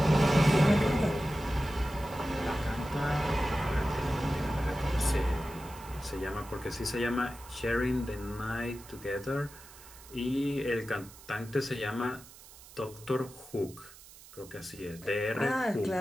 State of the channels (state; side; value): noise; right; hiss, 20 dB below the sound